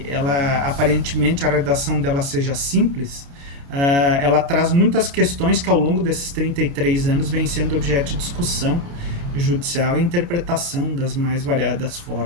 ela aparentemente a redação dela seja simples, ela traz muitas questões que ao longo desses 33 anos vêm sendo objeto de discussão judicial e interpretação das mais variadas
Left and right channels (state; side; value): late; left; 29 ms